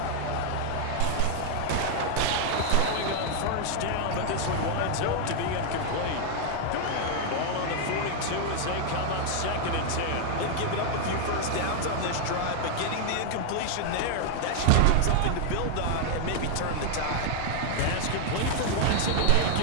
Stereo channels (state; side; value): different; both; correlation 0.00